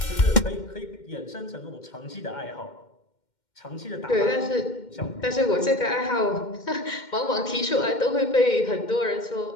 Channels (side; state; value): right; late; 2.1 ms